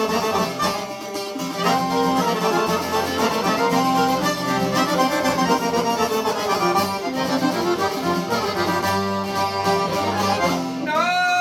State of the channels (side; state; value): both; identical; correlation 1.00